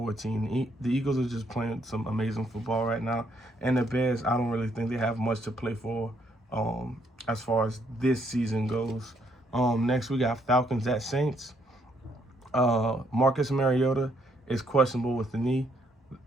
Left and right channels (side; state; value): both; normal; correlation 0.71